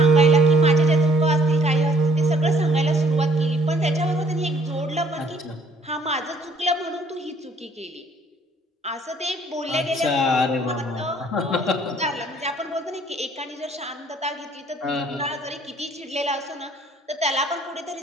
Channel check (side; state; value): both; normal; correlation 0.62